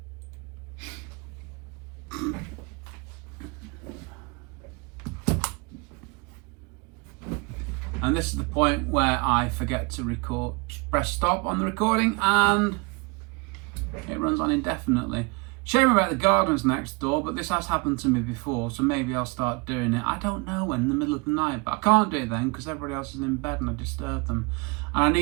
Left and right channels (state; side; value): quieter; left; 29.2 dB